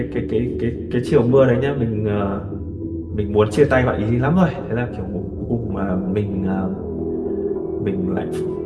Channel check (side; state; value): both; identical; correlation 1.00